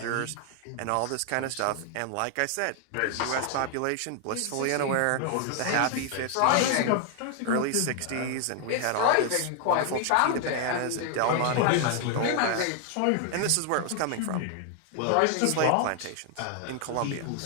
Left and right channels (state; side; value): different; both; correlation 0.00